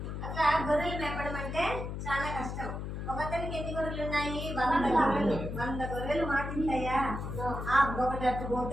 అట్లా గొర్రెలు మేపడం అంటే చాలా కష్టం. ఒకతనికి ఎన్ని గొర్రెలు ఉన్నాయి? 100 గొర్రెలు. 100 గొర్రెలు మాటింటాయా? ఒకటి అట్టు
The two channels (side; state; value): left; noise; hum, 5 dB below the sound